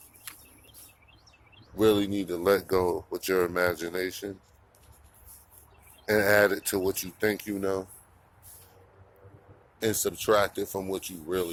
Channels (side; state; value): both; identical; correlation 1.00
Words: really need to let go with your imagination and add it to what you think you know and subtract it from what you